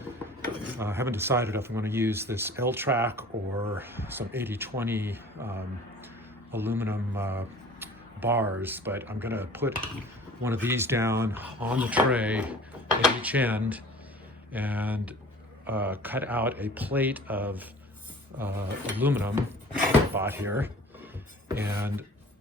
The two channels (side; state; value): both; normal; correlation 0.45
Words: I haven't decided if I'm going to use this L-track or some 80/20 aluminum bars, but I'm going to put one of these down on the tray at each end and cut out a plate of aluminum I bought here and